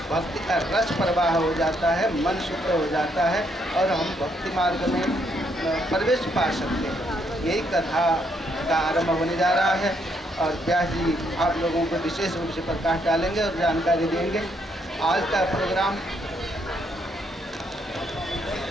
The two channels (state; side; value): normal; both; correlation 0.73